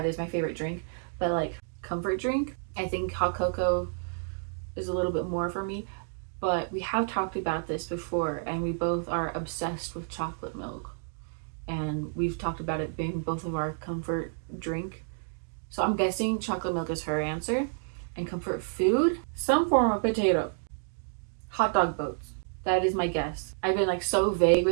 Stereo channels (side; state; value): left; silent; digital silence